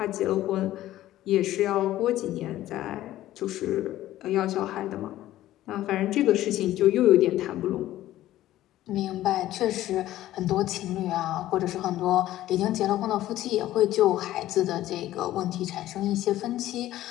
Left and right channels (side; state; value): right; quieter; 14.3 dB